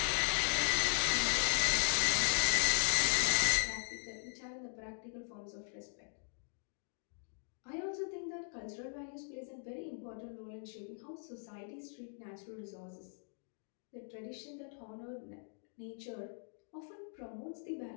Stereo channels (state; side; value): silent; right; digital silence